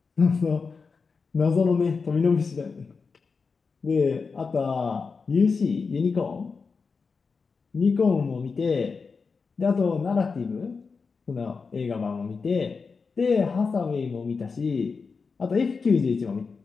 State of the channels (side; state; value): right; quieter; 4.9 dB